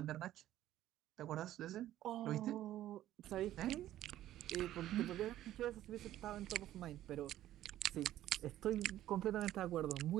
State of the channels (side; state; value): left; quieter; 13.3 dB